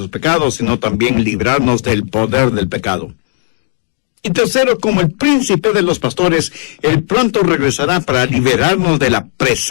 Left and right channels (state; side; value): silent; right; digital silence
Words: pecados, sino también librarnos del poder del pecado. Y tercero, como el príncipe de los pastores, Él pronto regresará para liberarnos de la